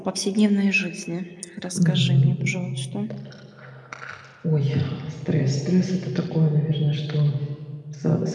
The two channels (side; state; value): both; identical; correlation 1.00